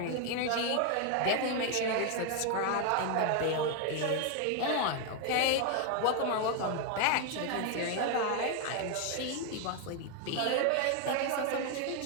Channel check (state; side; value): different; both; correlation 0.01